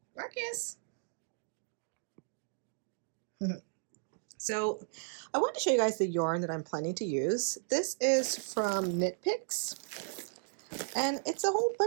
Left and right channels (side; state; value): left; silent; digital silence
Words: Marcus. So I want to show you guys the yarn that I'm planning to use. This is from Knit Picks, and it's a whole